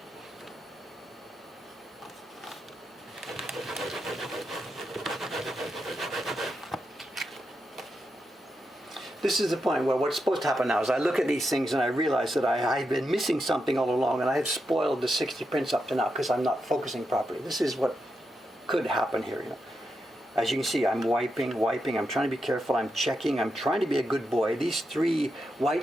This is the point where what's supposed to happen now is I look at these things and I realize that I've been missing something all along, and I have spoiled the 60 prints up to now because I'm not focusing properly. This is what could happen here. You know. As you can see, I'm wiping. I'm trying to be careful. I'm checking. I'm trying to be a good boy. These 3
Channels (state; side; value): normal; both; correlation 0.85